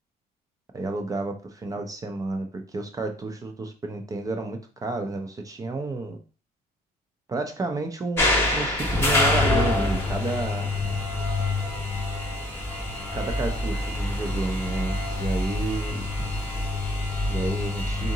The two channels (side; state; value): both; normal; correlation 0.59